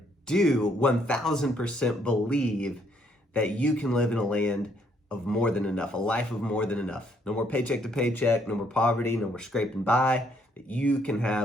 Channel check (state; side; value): normal; both; correlation 0.69